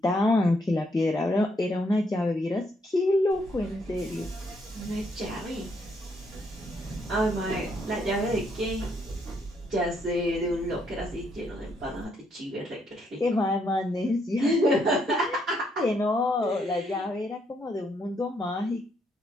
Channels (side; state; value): both; normal; correlation 0.73